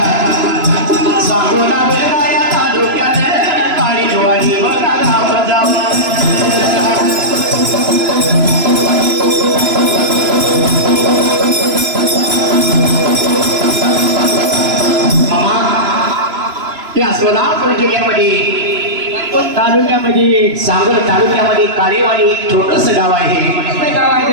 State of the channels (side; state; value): left; late; 3.0 ms